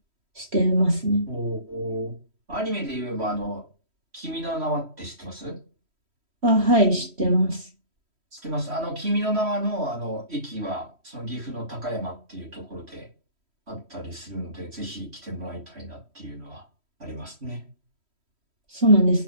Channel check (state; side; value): late; left; 3.1 ms